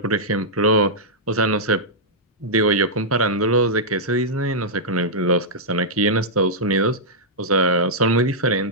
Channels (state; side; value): normal; both; correlation -0.09